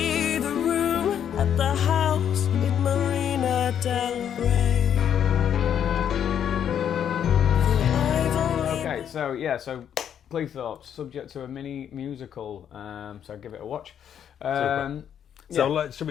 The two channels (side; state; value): right; quieter; 9.1 dB